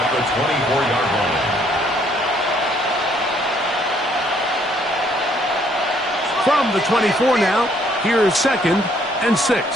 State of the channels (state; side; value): normal; both; correlation 0.66